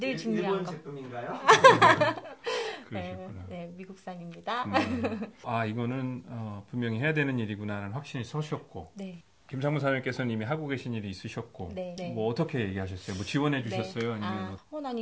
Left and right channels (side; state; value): both; identical; correlation 1.00